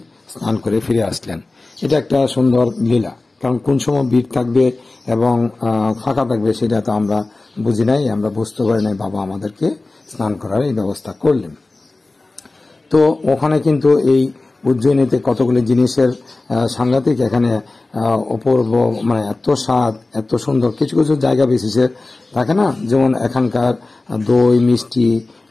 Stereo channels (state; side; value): quieter; right; 3.2 dB